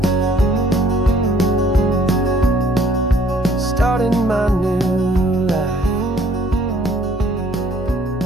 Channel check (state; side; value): normal; both; correlation 0.60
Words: starting my new life,